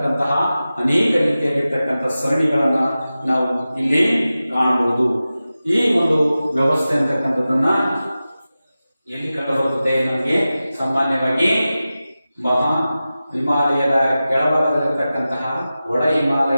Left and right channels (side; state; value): both; inverted; correlation -0.95